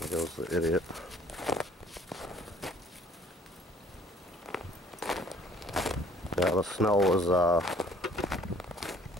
goes the idiot. Yeah, the snow was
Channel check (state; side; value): normal; both; correlation 0.55